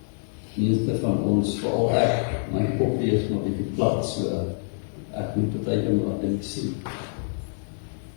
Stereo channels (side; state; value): right; silent; digital silence